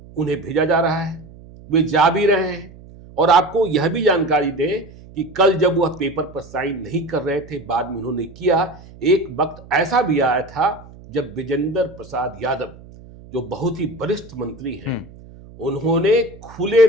उन्हें भेजा जा रहा है, वे जा भी रहे हैं। और आपको यह भी जानकारी दें कि कल जब वह पेपर पर साइन नहीं कर रहे थे, बाद में उन्होंने किया। एक वक्त ऐसा भी आया था जब विजेंद्र प्रसाद यादव, जो बहुत ही वरिष्ठ मंत्री हैं, उन्होंने खुले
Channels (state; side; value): noise; right; hum, 20 dB below the sound